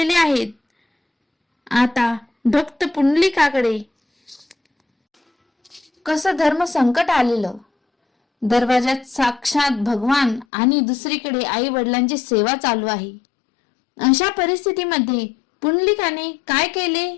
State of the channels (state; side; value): drops out; right; at 10.5 s